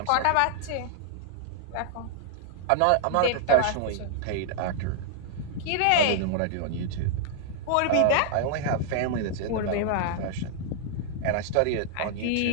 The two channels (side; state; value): both; different; correlation 0.00